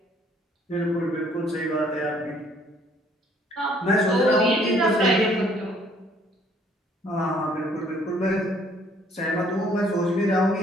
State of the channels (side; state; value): both; normal; correlation 0.62